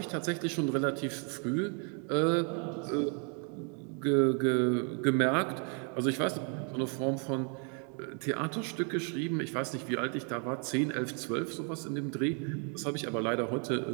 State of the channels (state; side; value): quieter; left; 39.6 dB